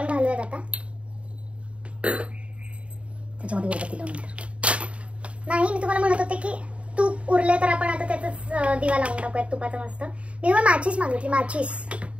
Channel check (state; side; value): late; left; 0.062 ms